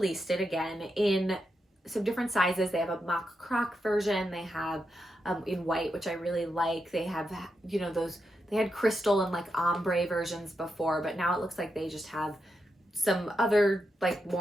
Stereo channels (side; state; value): both; normal; correlation 0.85